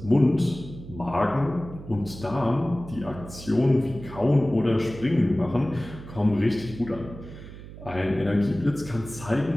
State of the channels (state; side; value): noise; right; hum, 14 dB below the sound